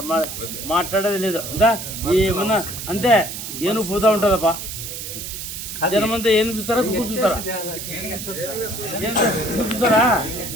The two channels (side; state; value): right; noise; hiss, 8 dB below the sound